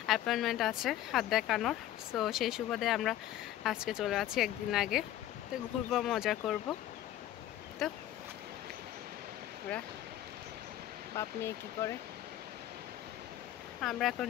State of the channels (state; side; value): quieter; right; 13.1 dB